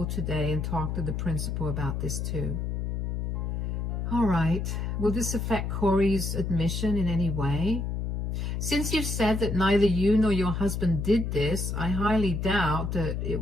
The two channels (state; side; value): noise; left; hum, 2 dB below the sound